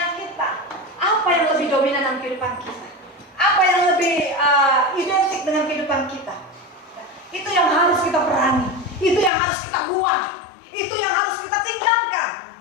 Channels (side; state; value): right; drops out; at 9.3 s